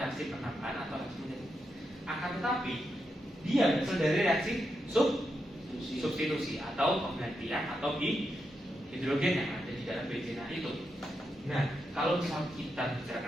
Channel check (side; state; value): both; normal; correlation 0.85